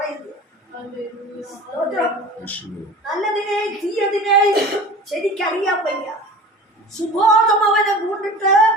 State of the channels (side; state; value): both; normal; correlation 0.39